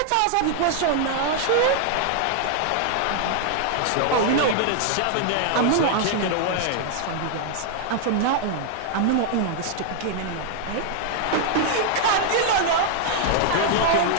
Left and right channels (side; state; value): both; different; correlation 0.00